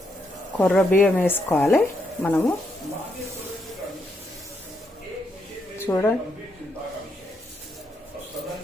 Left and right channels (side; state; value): both; normal; correlation 0.78